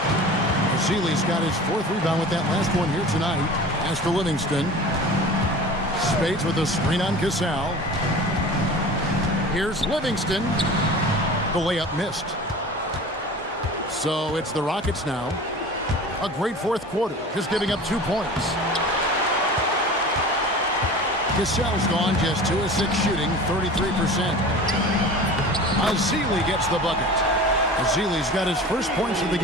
Zeeley's got his fourth rebound with that last one here tonight. As for Livingston. Spates with a screen on Cassell. Here's Livingston. The layup missed. So it's the Rockets now. A great fourth quarter, just giving up 2 points. Cassell's gone just 2 of 6 shooting, 33%. Zeeley gets the bucket. Zeeley's got his first points of the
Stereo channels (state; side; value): normal; both; correlation 0.38